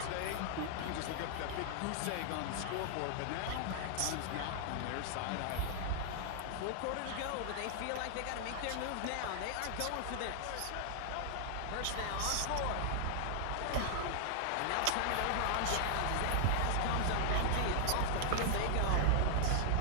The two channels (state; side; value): different; both; correlation -0.01